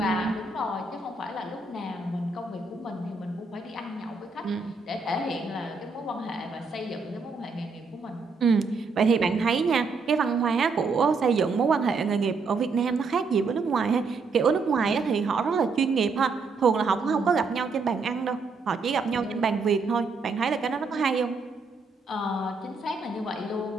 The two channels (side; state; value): left; quieter; 4.3 dB